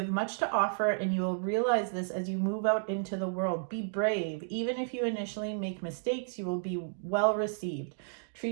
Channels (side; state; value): left; silent; digital silence